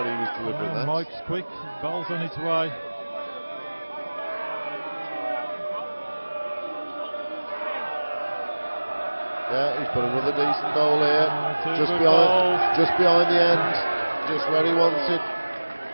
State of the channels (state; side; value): inverted; both; correlation -1.00